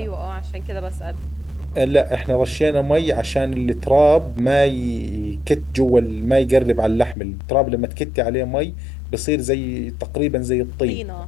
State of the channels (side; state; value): right; drops out; at 7.2 s